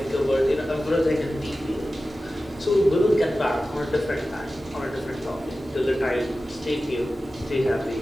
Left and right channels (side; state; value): both; normal; correlation 0.95